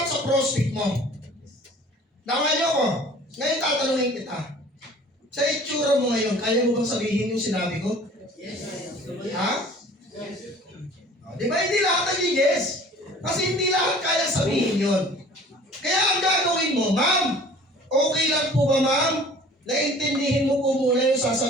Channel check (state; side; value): normal; both; correlation 0.48